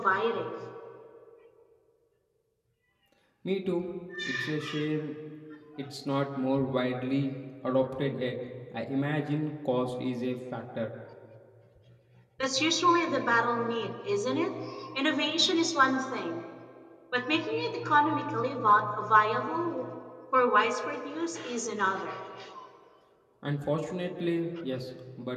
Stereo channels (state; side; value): identical; both; correlation 1.00